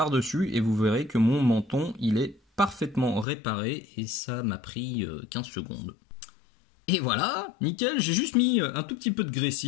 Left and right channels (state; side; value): drops out; right; at 3.2 s